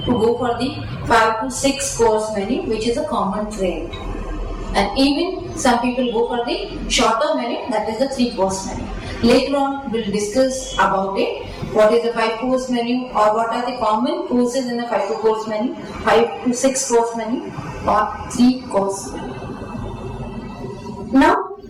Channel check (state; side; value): identical; both; correlation 1.00